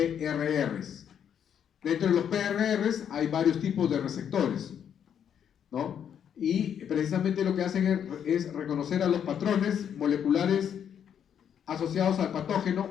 Dentro de los PRRs hay varios tipos de receptores. ¿no? Y precisamente lo que hacen es reconocer a los patrones moleculares asociados al patógeno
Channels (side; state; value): right; quieter; 8.6 dB